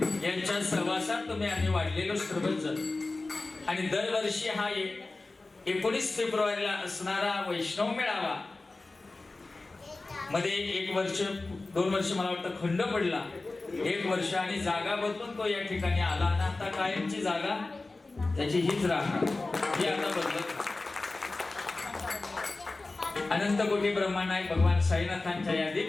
यांच्या सहवासात तुम्ही आम्ही वाढलेलो सर्वजण आणि दरवर्षी हा 19 फेब्रुवारीला असणारा वैष्णव मेळावा मध्ये 1 वर्ष 2 वर्ष मला वाटतं खंड पडला 1 वर्ष आणि जागा बदलून तो या ठिकाणी आला आणि आता कायमची जागा त्याची हीच राहणार ही आता बदलत अनंत कोटी ब्रह्मांड भगवान साईनाथांच्या या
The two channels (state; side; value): quieter; right; 3.3 dB